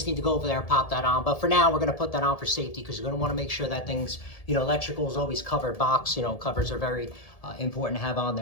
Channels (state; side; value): late; right; 1.7 ms